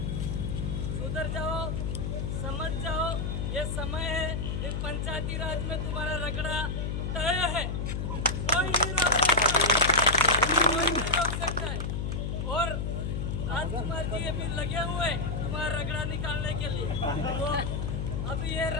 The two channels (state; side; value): noise; left; hum, 2 dB below the sound